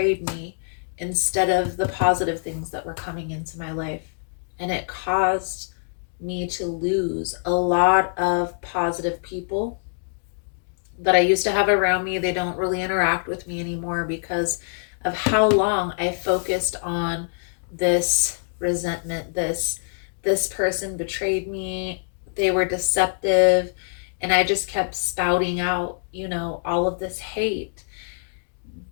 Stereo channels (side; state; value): right; silent; digital silence